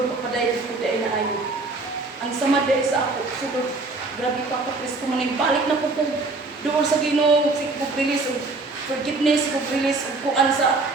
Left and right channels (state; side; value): quieter; left; 3.5 dB